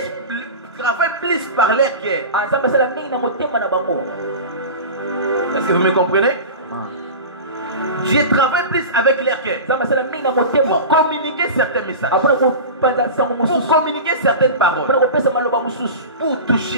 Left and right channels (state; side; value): inverted; both; correlation -0.30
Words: travaille plus par leur cœur. Est-ce que vous me comprenez? Dieu travaille plus avec leur cœur pour communiquer certains messages, pour communiquer certaines paroles, pour